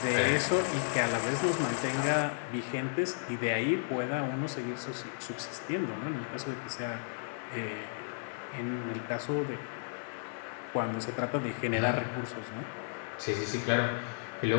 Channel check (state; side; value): silent; right; 55 dB below the other